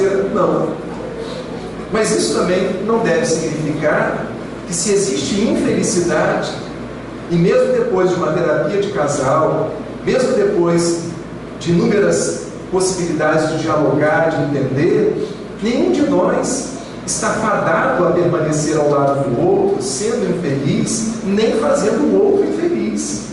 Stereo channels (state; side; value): identical; both; correlation 1.00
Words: Não. Mas isso também não deve significar que, se existe infelicidade, e mesmo depois de uma terapia de casal, mesmo depois de inúmeras possibilidades de dialogar, de entender, nenhum de nós está fadado a permanecer ao lado do outro, sendo infeliz, nem fazendo o outro infeliz.